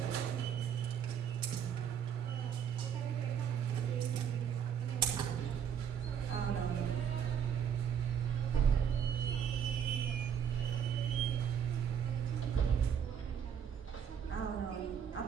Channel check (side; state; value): left; quieter; 8.2 dB